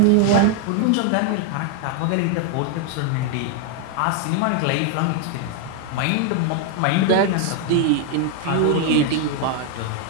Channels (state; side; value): different; both; correlation 0.01